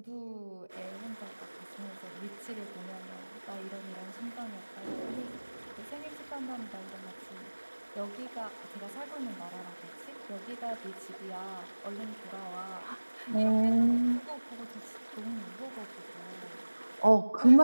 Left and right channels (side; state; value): both; inverted; correlation -1.00